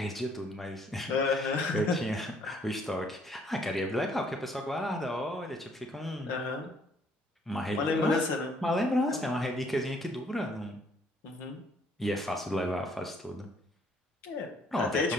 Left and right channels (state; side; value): normal; both; correlation 0.65